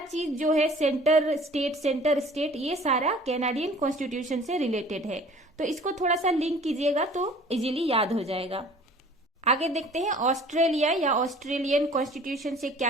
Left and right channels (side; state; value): both; normal; correlation 0.49